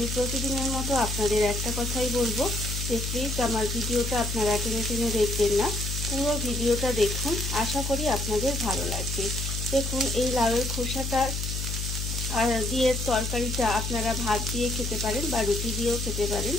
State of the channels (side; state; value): left; noise; hum, 3 dB below the sound